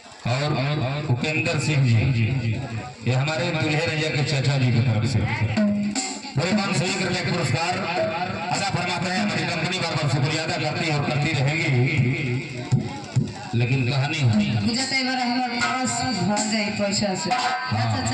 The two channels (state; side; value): identical; both; correlation 1.00